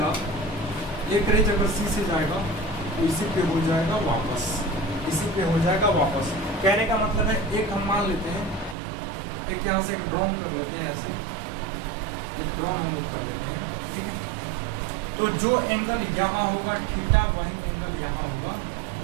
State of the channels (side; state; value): left; drops out; at 8.8 s